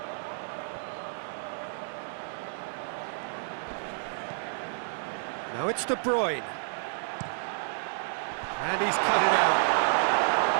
Now it's De Bruyne. And he's cut it out.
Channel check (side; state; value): left; silent; 58 dB below the other